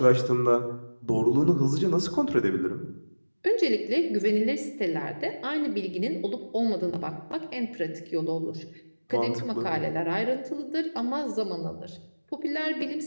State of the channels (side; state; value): both; inverted; correlation -1.00